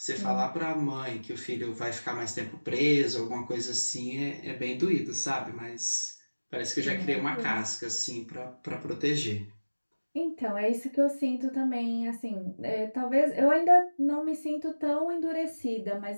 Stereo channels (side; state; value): both; inverted; correlation -1.00